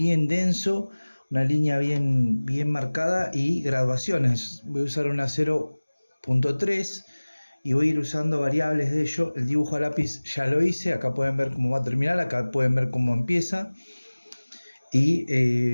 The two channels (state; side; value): inverted; both; correlation -1.00